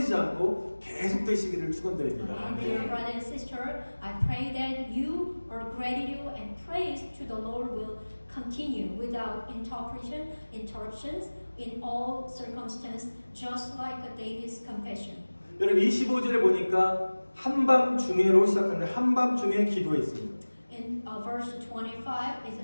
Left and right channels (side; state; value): both; inverted; correlation -1.00